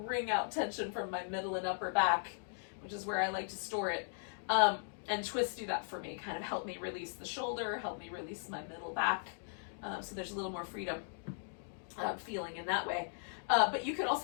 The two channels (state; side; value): silent; right; digital silence